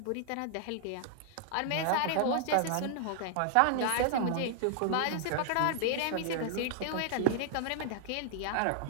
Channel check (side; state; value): both; different; correlation -0.01